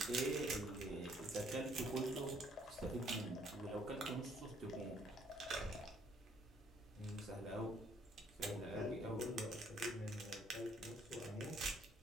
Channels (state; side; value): normal; both; correlation 0.65